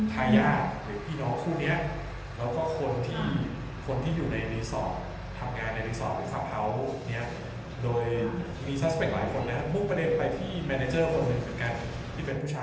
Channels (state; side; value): identical; both; correlation 1.00